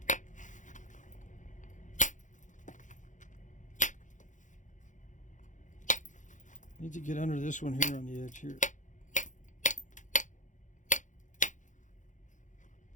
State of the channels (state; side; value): late; right; 0.36 ms